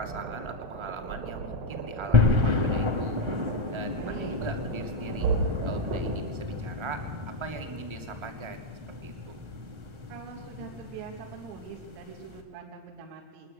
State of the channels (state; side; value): late; left; 1.3 ms